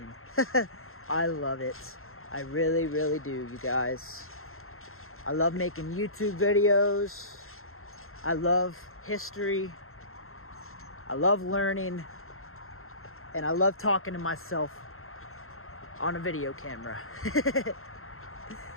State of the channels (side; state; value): right; late; 0.62 ms